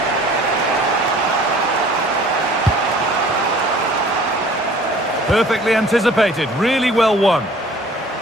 Perfectly anticipated, really well won.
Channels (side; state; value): both; normal; correlation 0.50